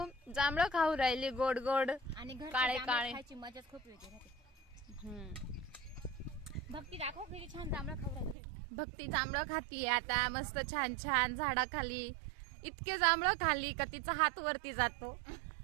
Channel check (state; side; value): drops out; left; at 8.3 s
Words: जांभळ खाऊ राहिली गोड गोड आणि काळे काळे खायची मजाच खूप वेगळी राहते. भक्ती दाखव किती छान जांभळ खाऊ राहिली. भक्ती जांभळ खातीये आता मस्त छान छान झाडाखाली. इतके जांभळ खाल्ली का तिचा हात वरती जातो.